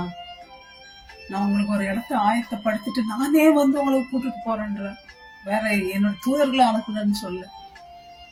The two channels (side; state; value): both; identical; correlation 1.00